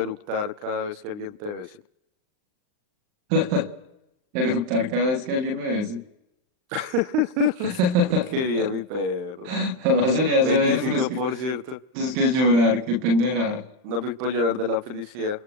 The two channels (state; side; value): late; left; 39 ms